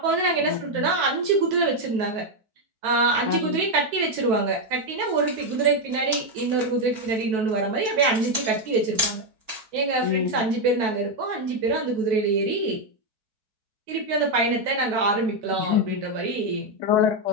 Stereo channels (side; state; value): left; late; 4.6 ms